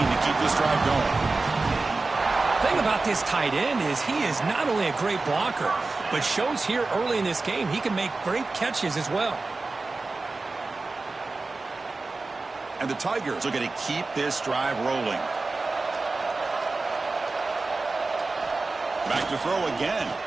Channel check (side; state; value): left; quieter; 3.6 dB